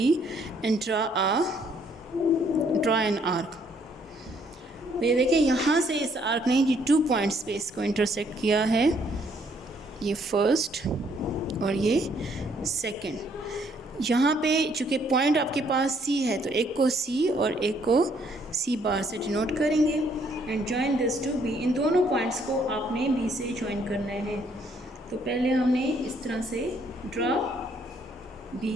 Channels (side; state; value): both; normal; correlation 0.67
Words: and draw an arc. तो ये देखिए यहाँ से इस आर्क ने ये 2 पॉइंट्स पे इसको इंटरसेक्ट किया है, ये फर्स्ट और ये सेकंड। यहाँ पे चूँकि पॉइंट आपके पास सी है, तो एक को सी और एक को सी बार से डिनोट करेंगे and join this to B. इन दोनों पॉइंट्स को आपने बी से जॉइन करना है। तो पहले हमने इस तरह से ड्रा